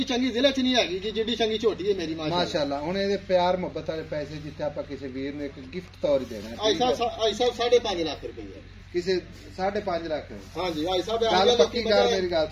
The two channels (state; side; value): identical; both; correlation 1.00